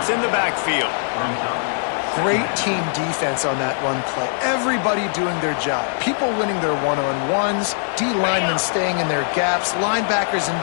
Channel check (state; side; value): silent; right; 64 dB below the other